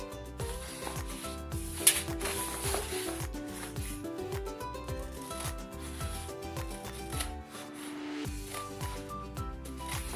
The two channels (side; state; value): both; identical; correlation 1.00